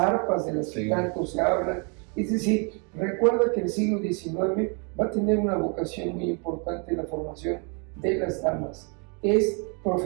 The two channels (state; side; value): quieter; left; 36.4 dB